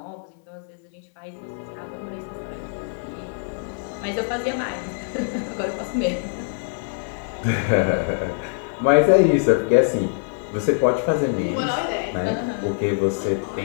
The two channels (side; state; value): right; silent; 63 dB below the other